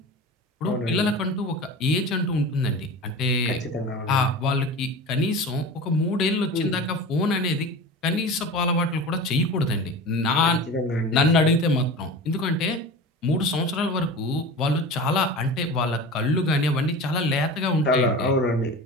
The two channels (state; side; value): normal; both; correlation 0.33